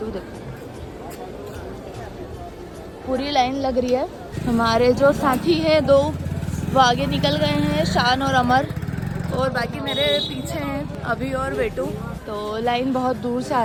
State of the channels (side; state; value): both; identical; correlation 1.00